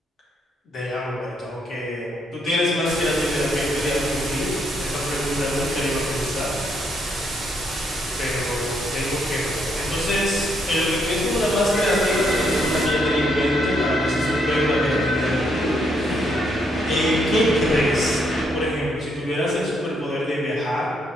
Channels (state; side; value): normal; both; correlation 0.75